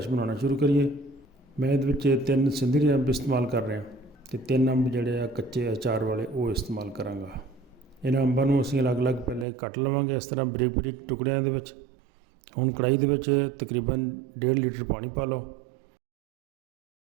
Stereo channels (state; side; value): drops out; left; at 9.5 s